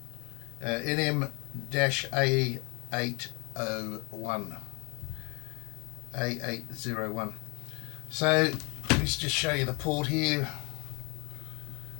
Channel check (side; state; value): right; quieter; 31.2 dB